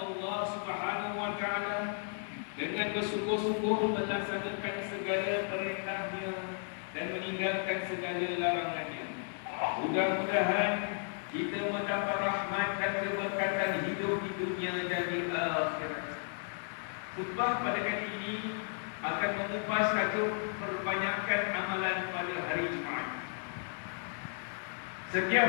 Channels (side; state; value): right; silent; 55 dB below the other